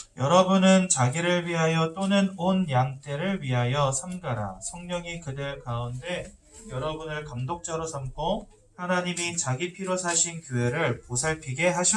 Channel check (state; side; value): identical; both; correlation 1.00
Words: 여러분은 자기를 위하여 또는 온 양떼를 위하여 삼가라. 성령이 그들 가운데 여러분을 감독자로 삼고 하나님이 자기 피로 사신 교회를 보살피게